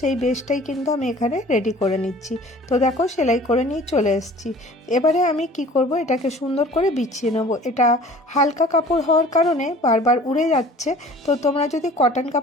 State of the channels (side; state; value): both; normal; correlation 0.48